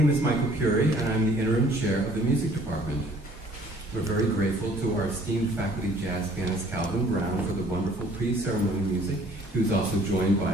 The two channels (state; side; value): normal; both; correlation 0.56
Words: is Michael Curie, and I'm the interim chair of the music department. We're very grateful to our esteemed faculty jazz pianist Calvin Brown for the wonderful pre-ceremony music. He was also joined by